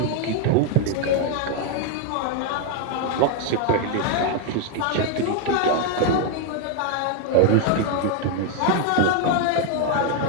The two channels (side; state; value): both; different; correlation 0.00